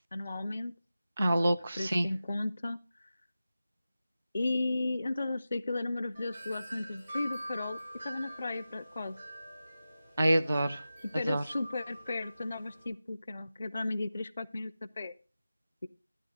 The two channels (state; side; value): inverted; both; correlation -0.93